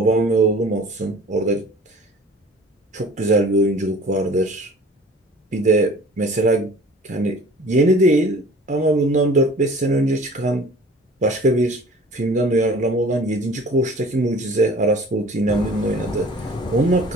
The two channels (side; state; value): both; normal; correlation 0.46